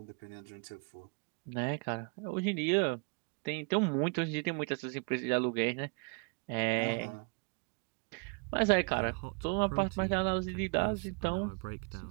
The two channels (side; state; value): left; quieter; 31.7 dB